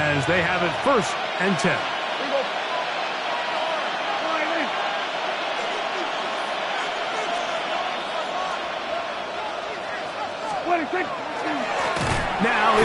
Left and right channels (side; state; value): both; identical; correlation 1.00